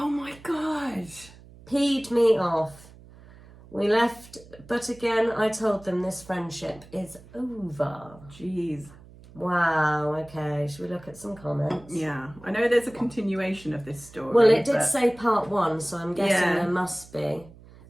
my God. Peed me off. We left, but again, I told them this friendship is over. Jeez. Wow, okay. Should we look at some comments? Yeah. I know there's a continuation of this story. Well, it did say part 1, so I'm guessing there must be.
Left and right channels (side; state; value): right; noise; hum, 21 dB below the sound